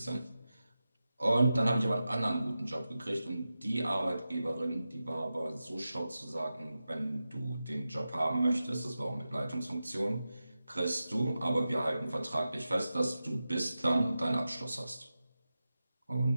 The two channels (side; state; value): both; inverted; correlation -0.93